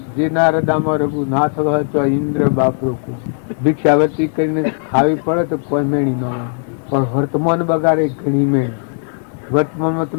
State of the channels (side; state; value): right; silent; digital silence